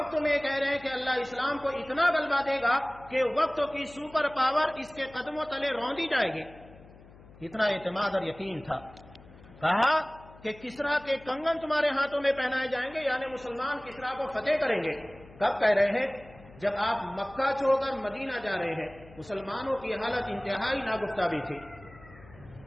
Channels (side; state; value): left; noise; hum, 22 dB below the sound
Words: میں کہہ رہے ہیں کہ اللہ اسلام کو اتنا غلبہ دے گا کہ وقت کی سپر پاور اس کے قدموں تلے روندی جائے گی. اتنا اعتماد اور یقین تھا. کہا کہ کسرا کے کنگن تمہارے ہاتھوں میں پہنائے جائیں گے، یعنی مسلمان کسرا کو فتح کریں گے. کب کہہ رہے ہیں؟ جب آپ مکہ چھوڑ کر مدینہ جا رہے ہیں. مسلمانوں کی حالت انتہائی ناگفتہ بھی تھی.